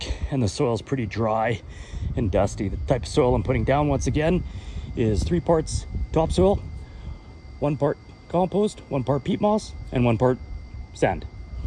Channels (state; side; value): identical; both; correlation 1.00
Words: and the soil's pretty dry and dusty. The type of soil I'm putting down, once again, is 3 parts topsoil, 1 part compost, 1 part peat moss, and 1 part sand.